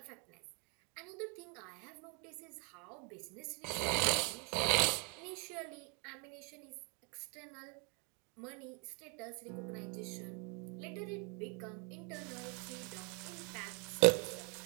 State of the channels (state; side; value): quieter; left; 34.1 dB